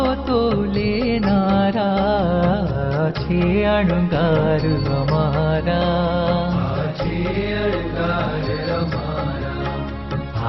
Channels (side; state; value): both; identical; correlation 1.00